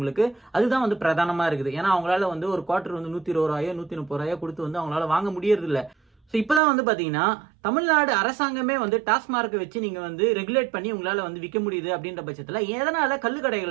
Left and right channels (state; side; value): drops out; left; at 6.6 s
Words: அதுதான் வந்து பிரதானமாக இருக்குது. ஏன்னா அவங்களால வந்து ஒரு குவார்டர் வந்து 120 ரூபாயோ 130 ரூபாயோ கொடுத்து வந்து அவங்களால வாங்க முடியறது இல்லை. ஸோ இப்போதான் வந்து பார்த்தீங்கன்னா தமிழ்நாடு அரசாங்கமே வந்து டாஸ்மார்க்கை வச்சு நீங்கள் வந்து ரெகுலேட் பண்ணி உங்களால் வந்து விற்க முடியுது அப்படின்ற பட்சத்தில் எதனால